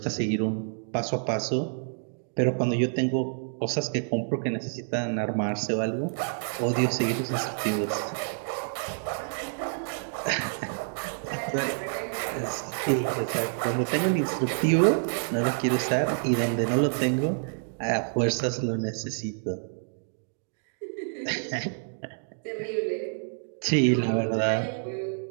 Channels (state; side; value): silent; left; digital silence